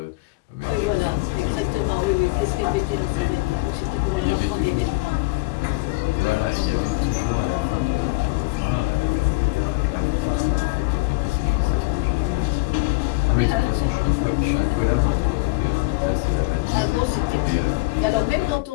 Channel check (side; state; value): right; quieter; 24.8 dB